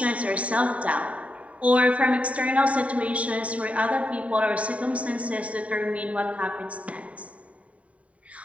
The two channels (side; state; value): left; late; 0.067 ms